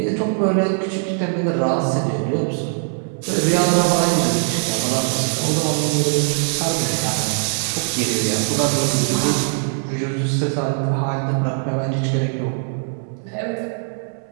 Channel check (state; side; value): silent; left; 65 dB below the other